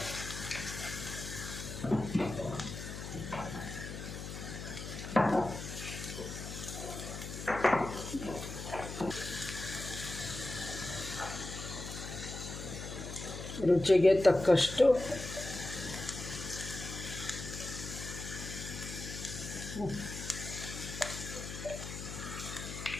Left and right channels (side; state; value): left; noise; hum, 8 dB below the sound